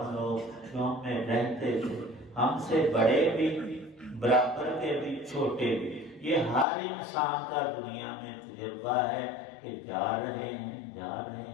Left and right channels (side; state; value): right; drops out; at 6.7 s